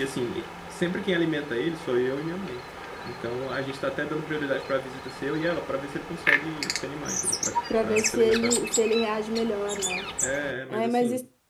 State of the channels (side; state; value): both; identical; correlation 1.00